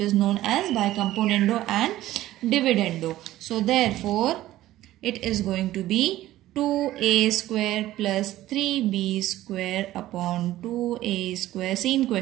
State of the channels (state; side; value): quieter; left; 15.0 dB